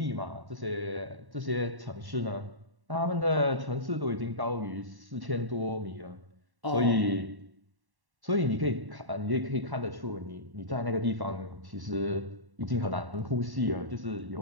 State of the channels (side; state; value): left; late; 1.1 ms